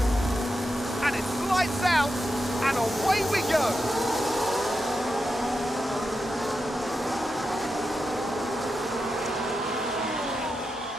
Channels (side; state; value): both; normal; correlation 0.88